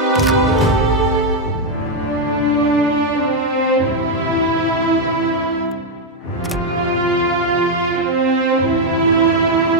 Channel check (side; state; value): both; normal; correlation 0.02